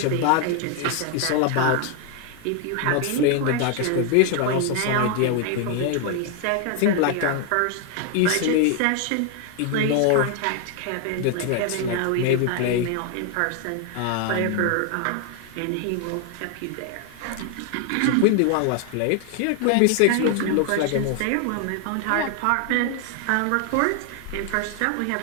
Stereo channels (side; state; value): both; different; correlation 0.00